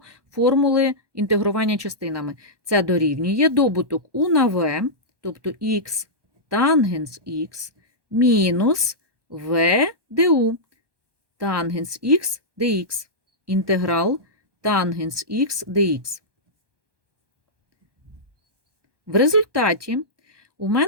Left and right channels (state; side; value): late; left; 1.2 ms